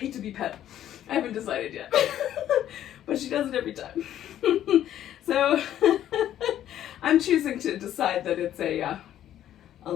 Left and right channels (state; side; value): quieter; right; 11.5 dB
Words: to be pet. I haven't decided yet, but she does it every time. So I'm choosing to decide that it's a